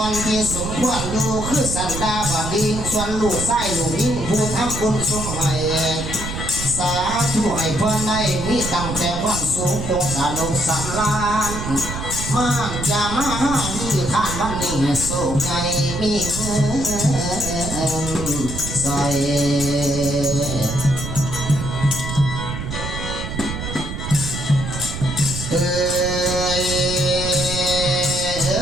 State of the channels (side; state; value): right; noise; rumble, 6 dB below the sound